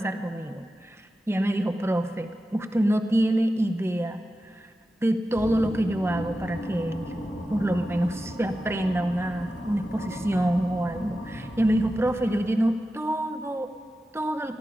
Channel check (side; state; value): both; normal; correlation 0.92